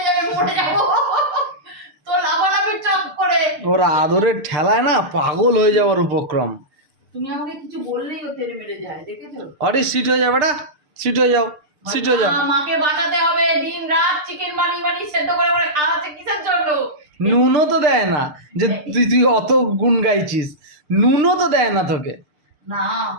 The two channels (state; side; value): late; left; 6.6 ms